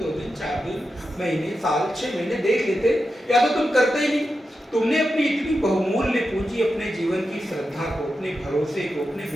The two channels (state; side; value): normal; both; correlation 0.89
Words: 2 दिन 4 दिन महीने साल 6 महीने देख लेते, या तो तुम करते ही नहीं। तुमने अपनी इतनी बहुमूल्य पूंजी, अपने जीवन की श्रद्धा को, अपने भरोसे को, अपने